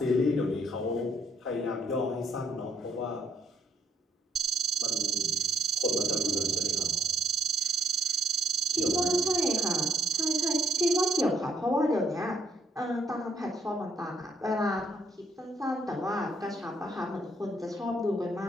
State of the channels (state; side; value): normal; both; correlation 0.71